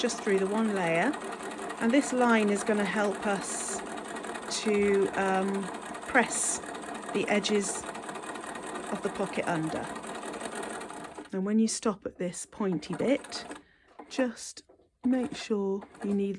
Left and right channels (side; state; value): both; identical; correlation 1.00